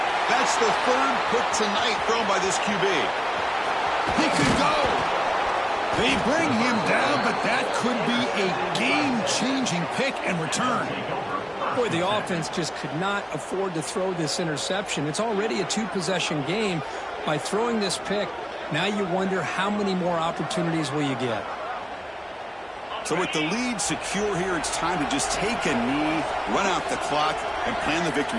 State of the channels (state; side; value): identical; both; correlation 1.00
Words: That's the 3rd pick tonight thrown by this QB. He could go. They bring him down, but that could be a game-changing pick and return. Boy, the offense just could not afford to throw this interception. It's already a 2-possession game. By throwing this pick, now you wonder how many more opportunities will you get. So with the lead secure here, it's time to just take a knee, run out the clock, and plan the